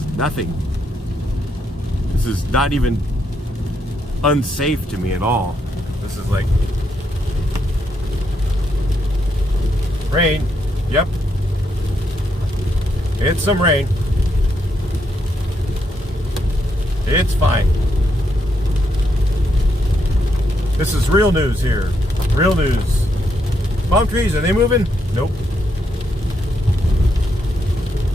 nothing. This is not even unsafe to me at all. This is like rain. Yep, it's some rain. It's fine. This is real news here. Real news. Palm trees, are they moving? Nope.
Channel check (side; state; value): both; normal; correlation 0.78